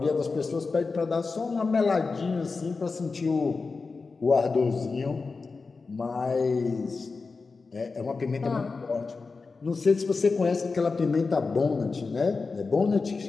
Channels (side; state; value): right; quieter; 4.3 dB